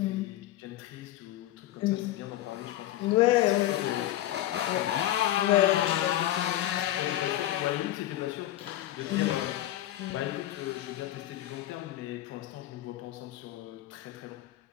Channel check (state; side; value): quieter; right; 14.2 dB